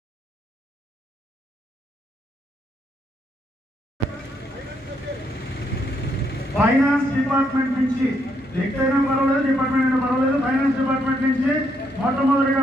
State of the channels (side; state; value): both; normal; correlation 0.75